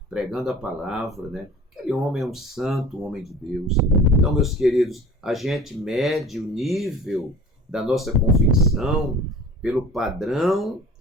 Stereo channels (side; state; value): both; normal; correlation 0.43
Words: pregando a palavra, né? Aquele homem é um santo, um homem de Deus. Então, meus queridos, a gente mede o nível da nossa convicção pelo padrão